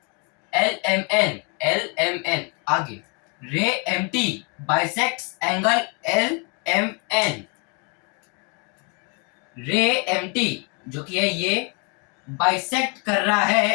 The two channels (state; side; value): quieter; right; 34.3 dB